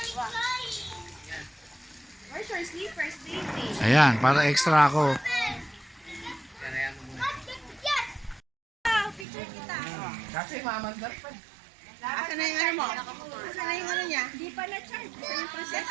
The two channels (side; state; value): left; drops out; at 9.2 s